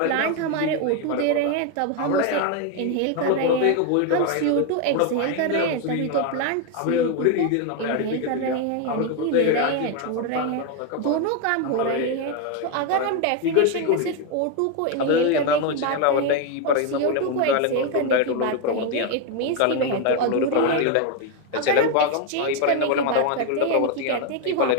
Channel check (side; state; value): both; different; correlation 0.01